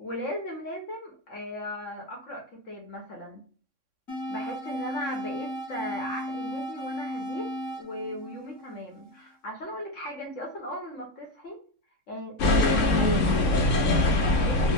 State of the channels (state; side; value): late; right; 3.6 ms